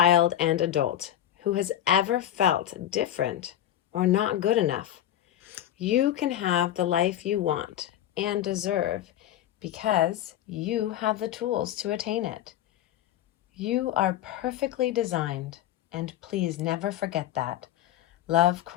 and adult who has ever felt different or not good enough. You can have the life you want and deserve because you have the tools to attain it. You are perfectly designed, and please never forget that. Love,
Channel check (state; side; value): quieter; right; 11.9 dB